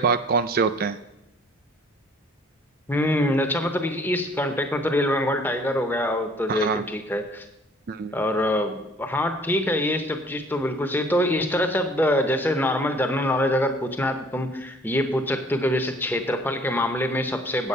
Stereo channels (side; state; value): both; normal; correlation 0.55